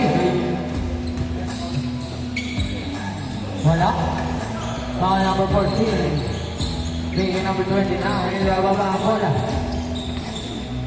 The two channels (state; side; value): identical; both; correlation 1.00